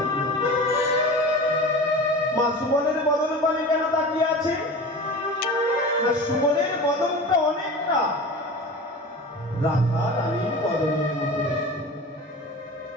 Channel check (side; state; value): both; normal; correlation 0.33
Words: মা সুবলের বদন পানে কেন তাকিয়ে আছে? না, সুবলের বদনটা অনেকটা রাধা রানীর বদনের মতো,